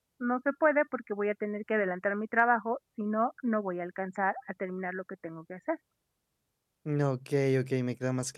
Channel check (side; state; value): both; identical; correlation 1.00